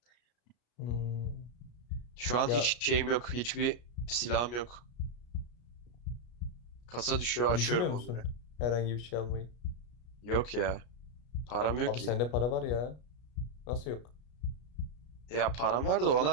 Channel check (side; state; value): right; late; 33 ms